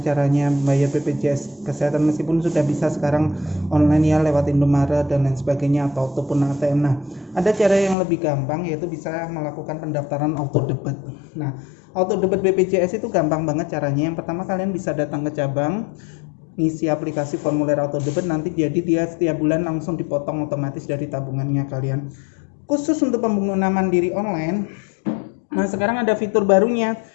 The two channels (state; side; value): drops out; right; at 8.0 s